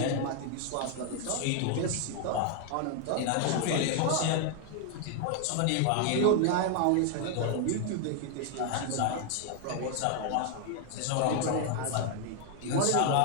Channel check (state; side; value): different; both; correlation 0.00